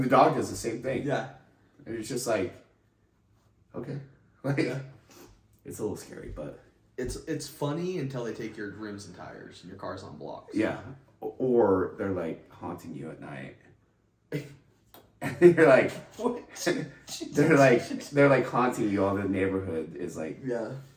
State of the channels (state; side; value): identical; both; correlation 1.00